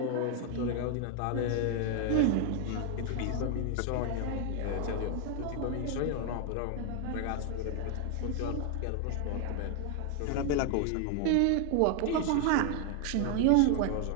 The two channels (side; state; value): both; different; correlation 0.00